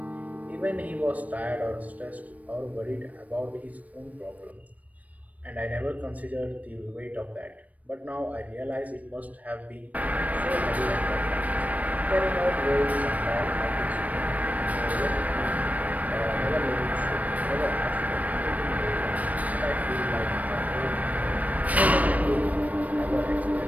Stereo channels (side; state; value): left; late; 0.071 ms